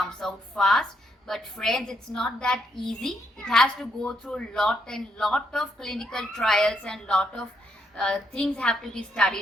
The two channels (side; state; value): both; normal; correlation 0.76